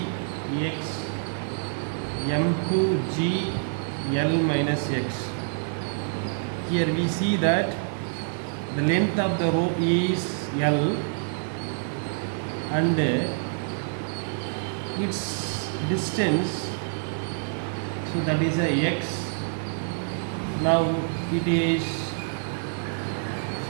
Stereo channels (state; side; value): silent; left; 60 dB below the other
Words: m2g L minus x. Here we see that the length of the rope is L and its distance, so that is a x. Now it is